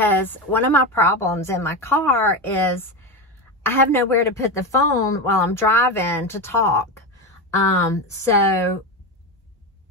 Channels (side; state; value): both; normal; correlation 0.18